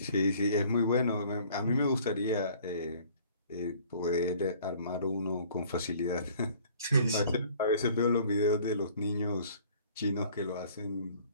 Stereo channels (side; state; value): both; inverted; correlation -0.54